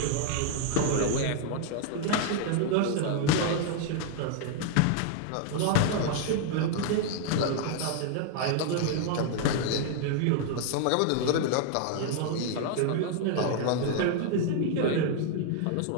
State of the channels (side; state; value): both; different; correlation 0.00